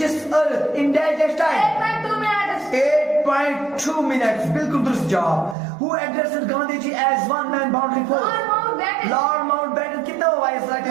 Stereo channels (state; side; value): drops out; left; at 5.6 s